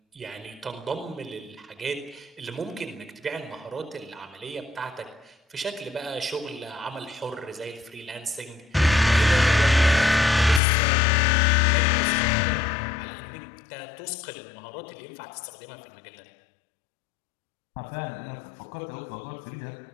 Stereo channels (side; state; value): right; drops out; at 10.6 s